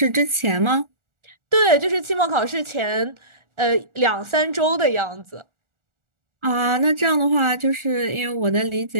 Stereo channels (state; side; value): late; left; 1.4 ms